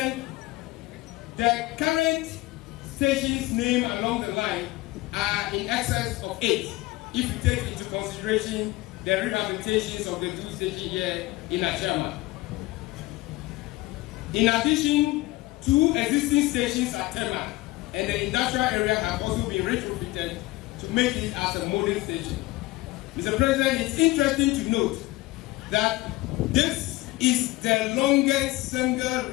the current stations named along the line are in excess of 8, if you take into consideration the rehabilitations of the 2 stations here in Ashama. In addition, 2 existing stations at Tema and the industrial area have also been retrofitted to make it as a modern station. Mr. President, it's interesting to note that this is the longest single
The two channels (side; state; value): right; quieter; 19.7 dB